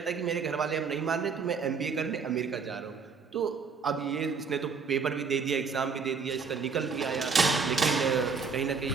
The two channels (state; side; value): quieter; left; 5.4 dB